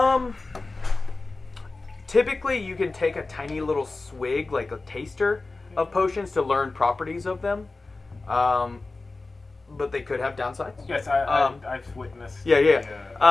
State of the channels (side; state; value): right; quieter; 3.5 dB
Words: Typically, you can take a tiny little swig, like a taster, of potions to learn properties of them. But they could have downsides. Yes, I've witnessed. Yeah, yeah.